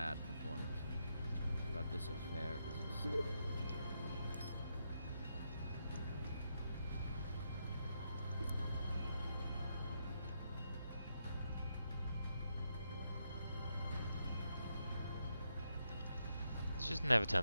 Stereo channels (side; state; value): both; inverted; correlation -0.82